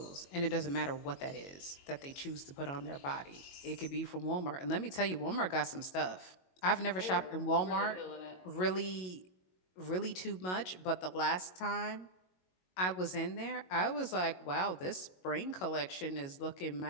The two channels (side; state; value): right; late; 22 ms